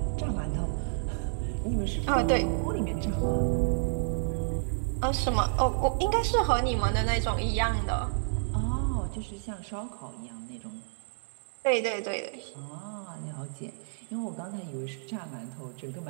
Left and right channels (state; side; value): silent; left; digital silence